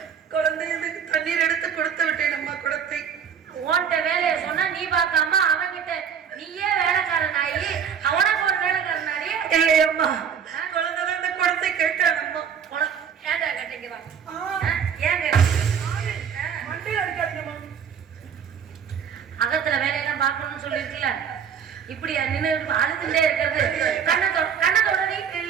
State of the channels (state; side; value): quieter; left; 7.5 dB